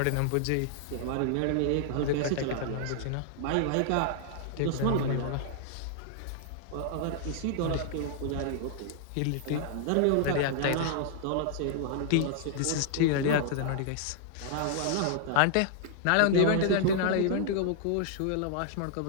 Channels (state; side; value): different; both; correlation -0.01